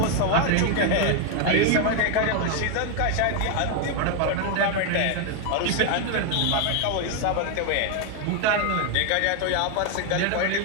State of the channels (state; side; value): different; both; correlation 0.01